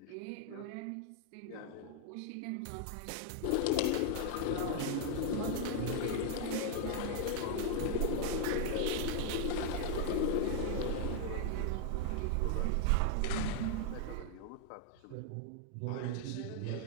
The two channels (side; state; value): both; different; correlation 0.00